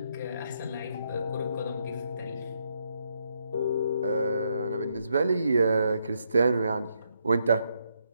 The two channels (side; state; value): both; inverted; correlation -0.78